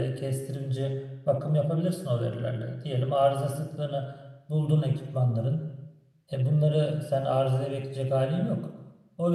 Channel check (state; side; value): identical; both; correlation 1.00